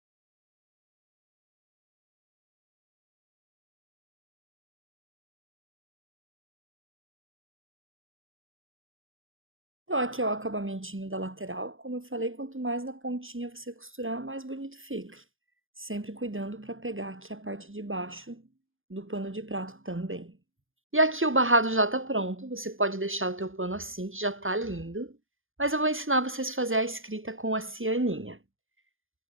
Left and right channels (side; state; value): left; late; 0.59 ms